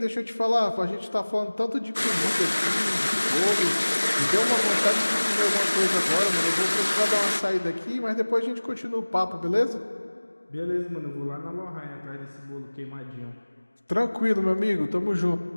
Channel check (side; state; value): both; inverted; correlation -1.00